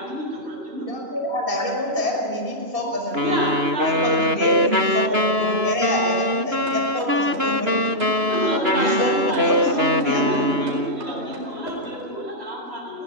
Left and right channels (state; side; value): late; left; 2.9 ms